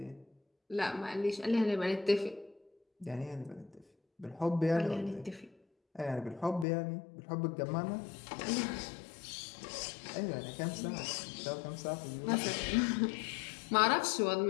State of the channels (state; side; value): drops out; right; at 6.7 s